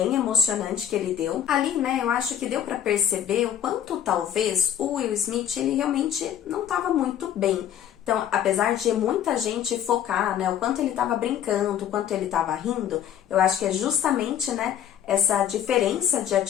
emocionante que ele deu. Ali, né, eu acho que deu para perceber o quanto talvez o Will Smith, ele realmente não estava muito bem. Então, apesar de muita gente focar, né, o quanto ele estava brincando, o quanto ele estava rindo, eu acho que é justamente, né, essa diferença de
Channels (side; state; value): right; quieter; 9.9 dB